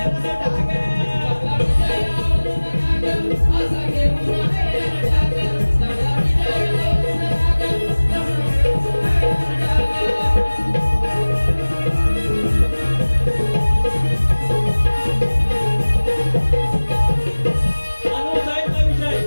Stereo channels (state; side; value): inverted; both; correlation -1.00